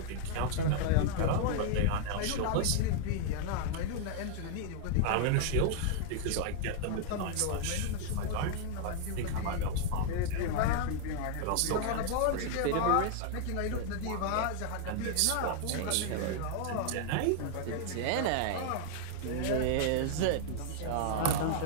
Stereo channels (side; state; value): both; different; correlation 0.00